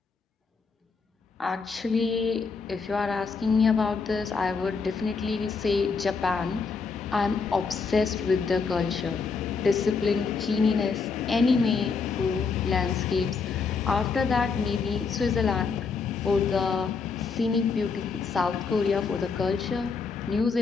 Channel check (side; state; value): right; quieter; 5.0 dB